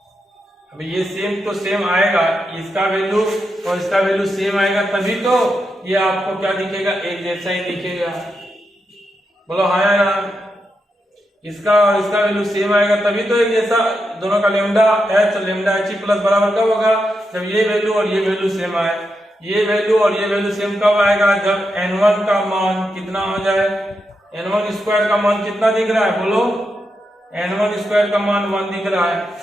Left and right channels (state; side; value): normal; both; correlation 0.85